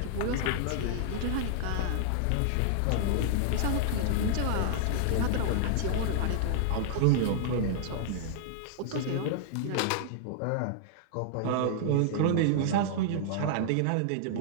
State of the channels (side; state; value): both; different; correlation -0.01